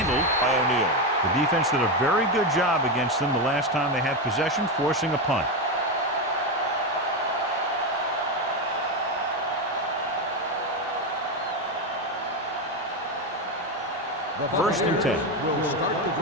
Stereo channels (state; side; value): normal; both; correlation 0.11